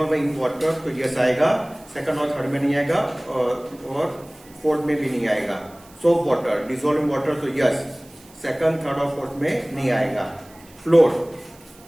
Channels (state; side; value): noise; right; hiss, 25 dB below the sound